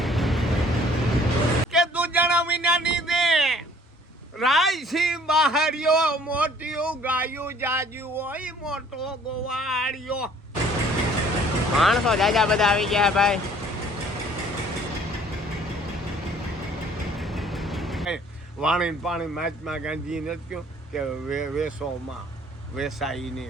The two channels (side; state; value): both; normal; correlation 0.57